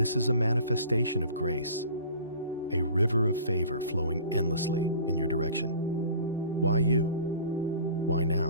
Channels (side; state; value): both; inverted; correlation -0.45